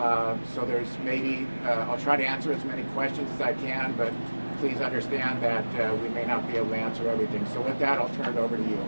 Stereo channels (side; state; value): both; inverted; correlation -1.00